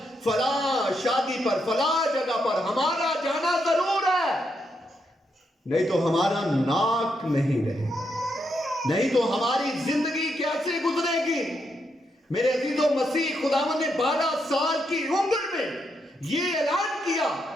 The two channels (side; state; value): both; normal; correlation 0.80